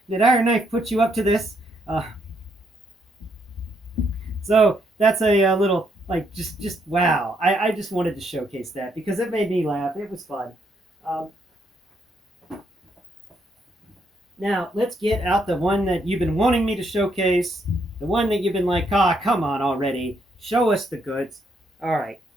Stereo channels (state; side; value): normal; both; correlation 0.74